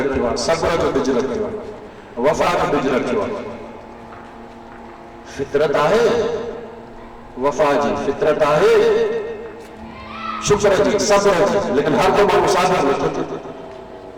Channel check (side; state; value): both; identical; correlation 1.00